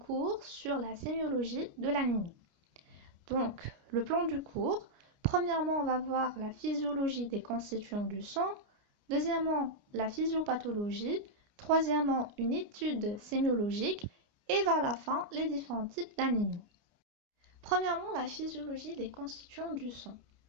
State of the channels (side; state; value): left; late; 29 ms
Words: sur la sémiologie de l'anémie. Donc, le plan du cours, premièrement on va voir la physiologie des constituants du sang, deuxièmement la physiopathologie, troisièmement une étude sémiologique et vers la fin les différents types d'anémie. Premièrement, la physiologie des constituants du sang.